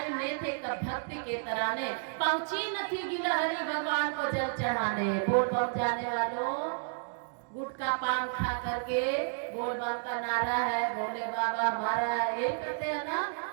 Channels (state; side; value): silent; left; digital silence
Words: ने थे कब भक्ति के तराने, पहुंची न थी गिलहरी भगवान को जल चढ़ाने। बोल बम जाने वालों, गुटखा पान खा करके बोल बम का नारा है, भोले बाबा हमारा है, ये करते हैं ना।